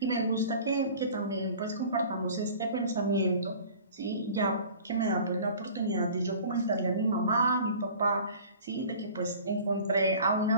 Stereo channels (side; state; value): both; inverted; correlation -0.44